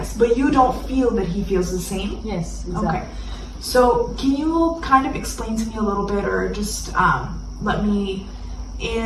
but you don't feel that he feels the same. Yes, exactly. Okay. So can you kind of explain to me a little bit, or just let me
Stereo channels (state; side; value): identical; both; correlation 1.00